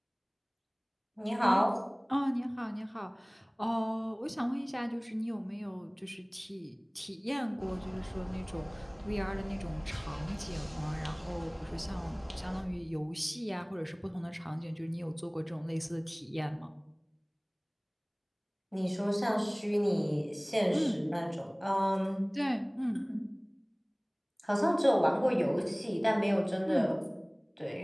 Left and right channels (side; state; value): both; identical; correlation 1.00